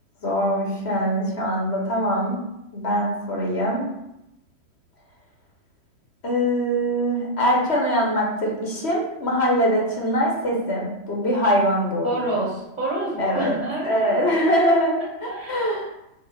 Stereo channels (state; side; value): late; right; 3.1 ms